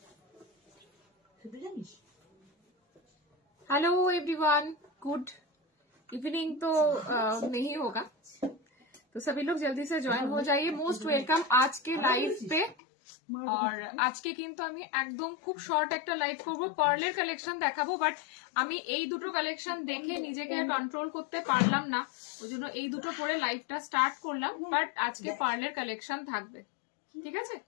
খেতে জানিস? Hello everyone, good evening. तो नहीं होगा तो सभी लोग जल्दी से ज्वाइन हो जाइए। मोस्ट वेलकम आज के लाइव पे। और আজকে কিন্তু আমি একদম খুব শর্ট একটা লাইভ করবো, পার্লের কালেকশন দেখাবো। বাট আমি এই দুটো কালেকশন দেখে নিজেকে কন্ট্রোল করতে পারলাম না, ওই জন্য এই দুটো পরে লাইভটা স্টার্ট করলাম। বাট আজকে পার্লের কালেকশন থাকবে, ঠিক আছে?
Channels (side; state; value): right; drops out; at 12.8 s